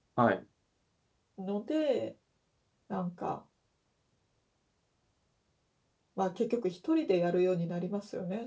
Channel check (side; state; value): both; identical; correlation 1.00